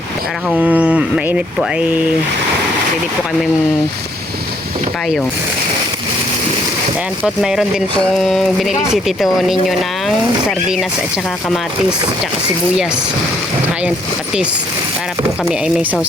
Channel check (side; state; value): both; normal; correlation 0.67